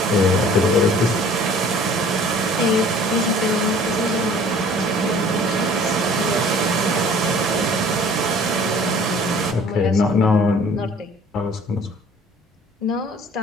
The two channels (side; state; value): both; normal; correlation 0.51